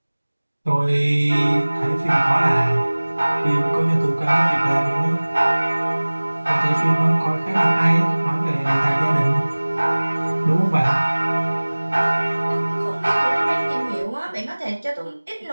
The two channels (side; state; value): both; inverted; correlation -1.00